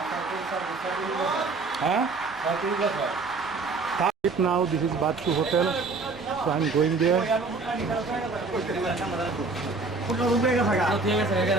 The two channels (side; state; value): left; quieter; 3.9 dB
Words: হ্যাঁ? Now this is Bachu Hotel, so I'm going there.